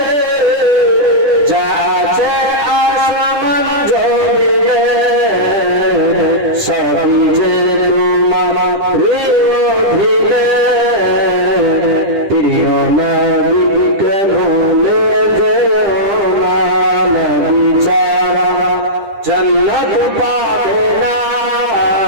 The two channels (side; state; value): left; late; 10 ms